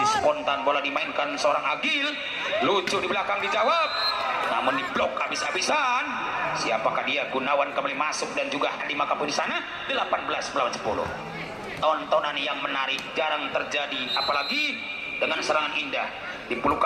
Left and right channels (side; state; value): both; identical; correlation 1.00